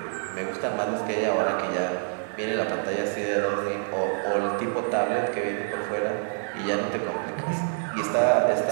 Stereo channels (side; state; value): left; silent; 60 dB below the other